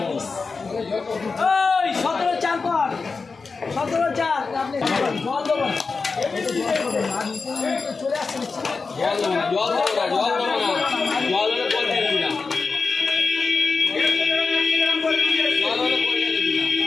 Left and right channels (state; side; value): quieter; right; 4.5 dB